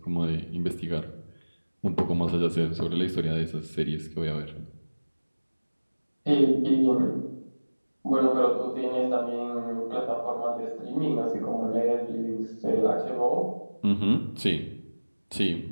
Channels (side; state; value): both; inverted; correlation -1.00